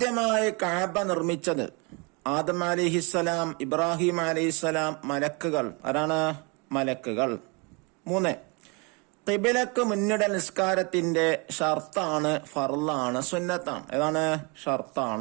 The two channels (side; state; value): left; quieter; 30.7 dB